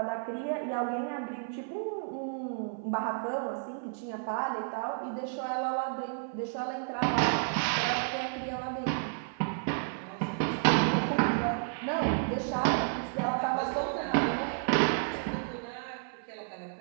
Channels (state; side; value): silent; left; 57 dB below the other